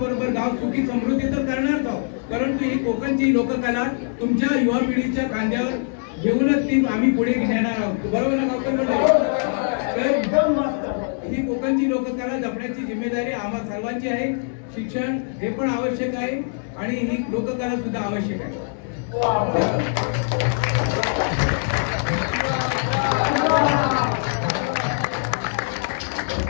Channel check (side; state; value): right; silent; 64 dB below the other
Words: गाव सुखी समृद्धी तर करणारच आहोत, परंतु ही कोकणची लोककला तुमच्या युवा पिढीच्या खांद्यावर घेऊनच ती आम्ही पुढे नेणार आहोत. बरोबर ना गावकर मंडळी? ही कोकणची लोककला जपण्याची जिम्मेदारी आम्हा सर्वांची आहे. शिक्षण हे पण आवश्यक आहे आणि ही लोककला सुद्धा आवश्यक आहे.